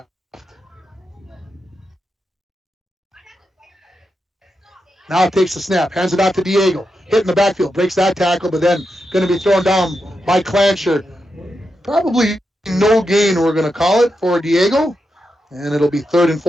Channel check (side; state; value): both; normal; correlation 0.86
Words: Now takes the snap, hands it out to Diego. Hit in the backfield, breaks that tackle, but then going to be thrown down by Clancher. Probably no gain, we're going to call it, for Diego. And it'll be 3rd and